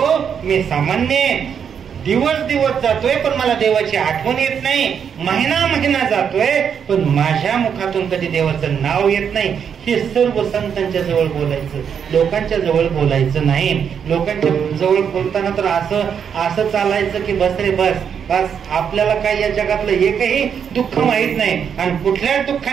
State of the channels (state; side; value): quieter; left; 7.5 dB